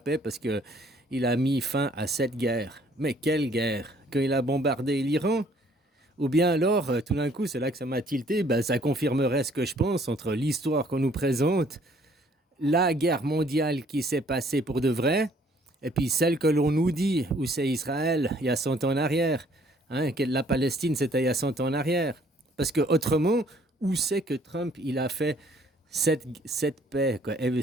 parce que il a mis fin à cette guerre. Mais quelle guerre? Quand il a bombardé l'Iran? Ou bien alors, tout d'un coup, c'est là que ça m'a tilté, ben, ça confirmerait ce que je pense entre l'histoire qu'on nous présente, la guerre mondiale qui s'est passée pour de vrai, et puis celle que l'on nous dit, où c'est Israël, il y a 100 ans en arrière. Hein, que la Palestine, c'était il y a 100 ans en arrière. Parce que autrement, où c'est que Trump, il a fait cette paix, quoi,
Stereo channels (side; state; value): both; normal; correlation 0.60